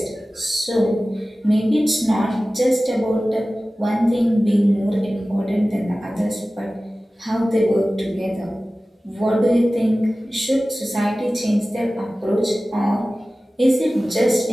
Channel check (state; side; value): normal; both; correlation 0.96